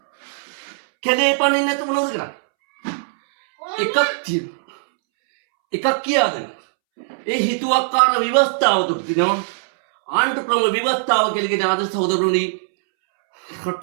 කැලේ පනින්න නැතුව මොනවද කරන්නේ? එකක් කියාද? ඒ හිතුවක්කාර ව්‍යවස්ථාව තුල තියෙනවා ආණ්ඩු ක්‍රම ව්‍යවස්ථාව කියලා කියන ආදර්ශ සහෝදරවරුනි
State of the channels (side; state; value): left; silent; 66 dB below the other